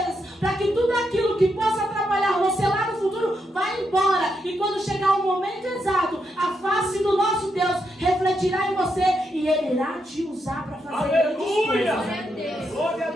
para que tudo aquilo que possa atrapalhar você lá no futuro, vá embora. E quando chegar o momento exato, a face do nosso Deus refletirá em você e Ele irá te usar para fazer grandes coisas. Glória a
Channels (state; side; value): normal; both; correlation 0.81